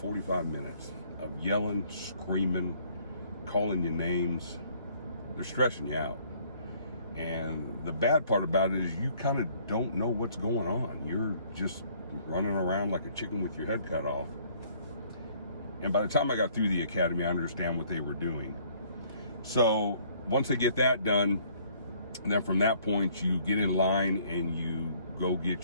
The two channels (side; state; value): both; inverted; correlation -0.61